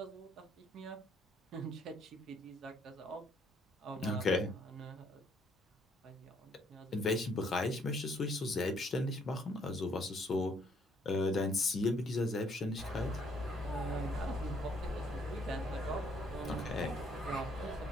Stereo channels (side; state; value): both; normal; correlation 0.66